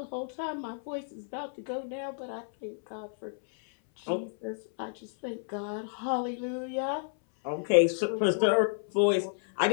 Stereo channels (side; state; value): right; silent; 57 dB below the other